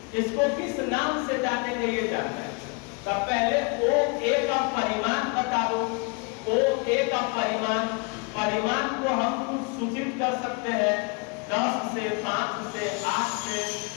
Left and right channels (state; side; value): quieter; right; 32.4 dB